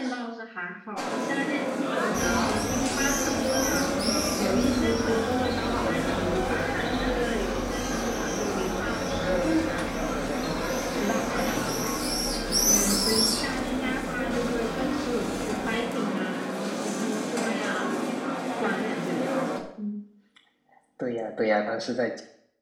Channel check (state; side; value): identical; both; correlation 1.00